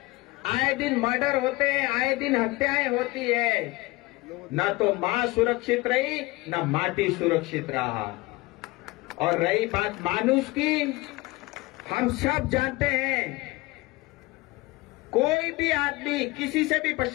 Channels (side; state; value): right; quieter; 21.8 dB